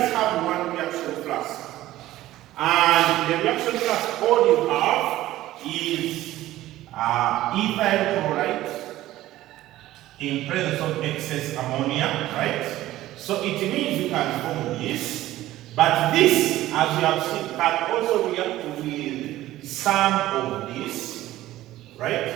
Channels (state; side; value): quieter; left; 15.3 dB